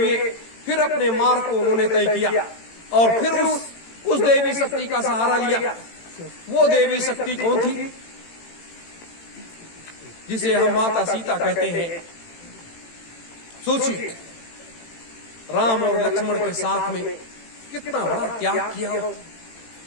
फिर अपने मार्ग को उन्होंने तय किया और फिर उस देवी शक्ति का सहारा लिया। वो देवी शक्ति कौन थी? जिसे हम माता सीता कहते हैं। सोचिए, राम और लक्ष्मण के साथ में कितना बड़ा त्याग किया,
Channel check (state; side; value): late; right; 18 ms